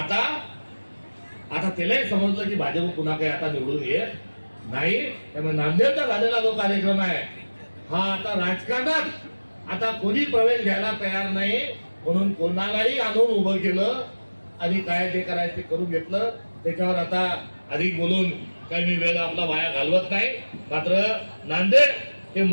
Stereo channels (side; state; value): both; inverted; correlation -1.00